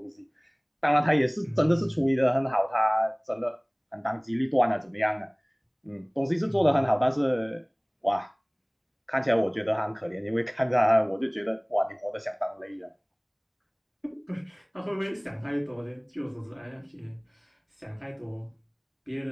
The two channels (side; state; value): both; identical; correlation 1.00